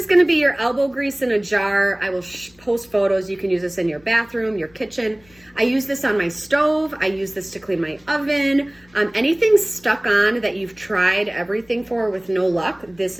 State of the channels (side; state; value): left; noise; hum, 30 dB below the sound